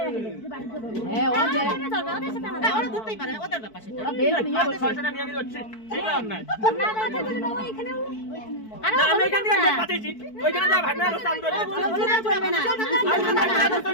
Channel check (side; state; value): right; late; 4.6 ms